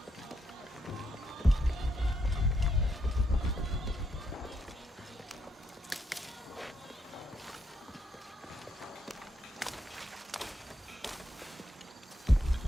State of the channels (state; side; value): normal; both; correlation 0.78